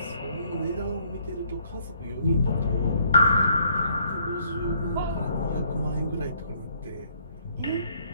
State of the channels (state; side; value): inverted; both; correlation -0.67